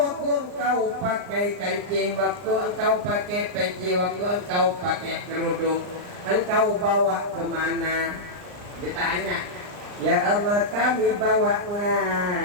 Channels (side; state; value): left; late; 39 ms